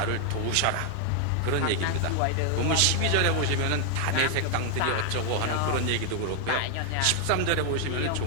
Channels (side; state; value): both; different; correlation 0.00